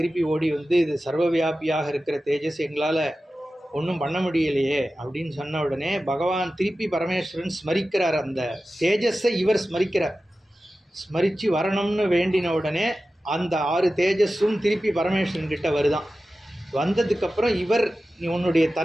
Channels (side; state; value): both; normal; correlation 0.94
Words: ஓடி வந்து இது சர்வவியாபியாக இருக்கிற தேஜஸ், எங்களால் ஒன்றும் பண்ண முடியலையே அப்படின்னு சொன்ன உடனே பகவான் திருப்பி பரமேஸ்வரன் ஸ்மரிக்கிறார். அந்த தேஜஸை இவர் ஸ்மரிக்கிறார். ஸ்மரித்து வரணும்னு வேண்டின உடனே அந்த 6 தேஜஸும் திருப்பி பரமேஸ்வரன் கிட்ட வருதான். வந்ததுக்கப்புறம் இவர் நீ உன்னுடைய